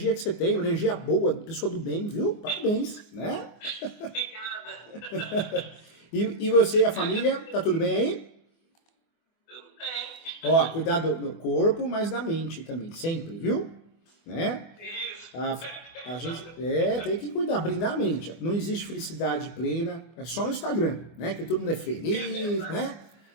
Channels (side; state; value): right; late; 24 ms